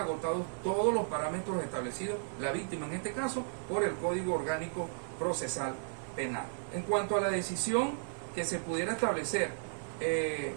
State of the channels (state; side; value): silent; left; digital silence